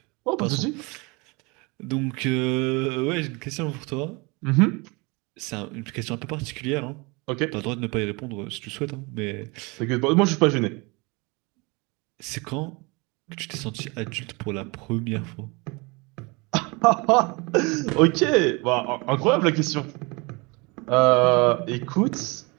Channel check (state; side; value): quieter; left; 27.3 dB